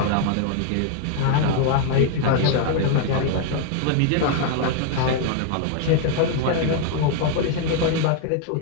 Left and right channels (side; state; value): both; different; correlation 0.00